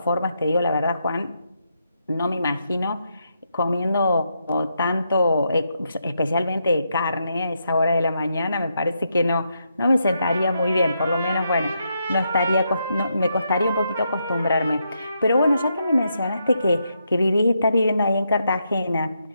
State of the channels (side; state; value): both; inverted; correlation -0.81